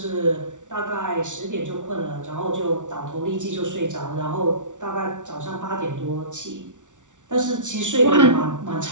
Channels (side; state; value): left; late; 0.86 ms